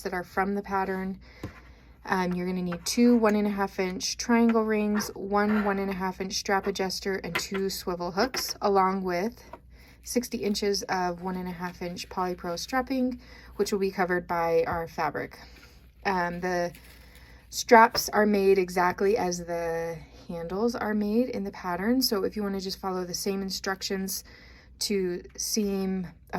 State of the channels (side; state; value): both; identical; correlation 1.00